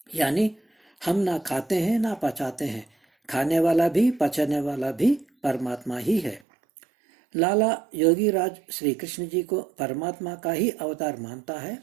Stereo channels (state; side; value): drops out; left; at 6.4 s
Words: यानी हम ना खाते हैं ना पचाते हैं, खाने वाला भी पचाने वाला भी परमात्मा ही है। लाला योगीराज श्री कृष्ण जी को परमात्मा का ही अवतार मानता है